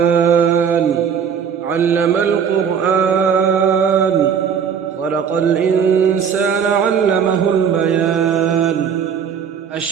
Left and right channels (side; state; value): left; quieter; 7.3 dB